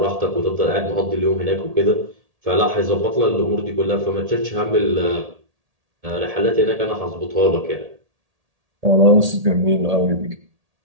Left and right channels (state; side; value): late; left; 1.8 ms